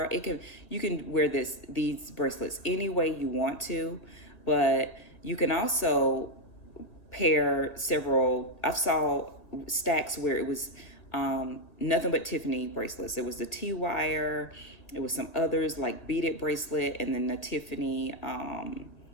You can wear these bracelets any way you want to, but you can also pair several. I saw stacks where it was nothing but Tiffany bracelets. It was the T-wire. It was some others like beaded bracelet, and then the Tiffany,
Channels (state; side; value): late; right; 1.8 ms